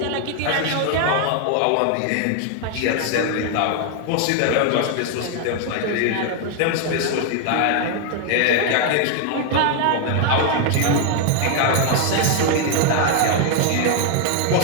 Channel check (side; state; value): both; different; correlation 0.00